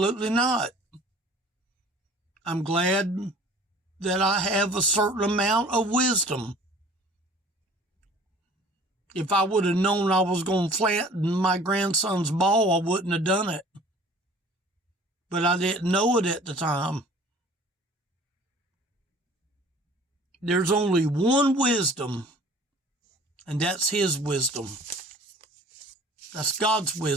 not. I'm glad that I have a certain amount of wisdom. If I would have known I was going to flatten my grandson's ball, I wouldn't have done it. But I didn't know it at the time. there's only one wisdom, and that's his wisdom. That's God's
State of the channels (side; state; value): both; normal; correlation 0.49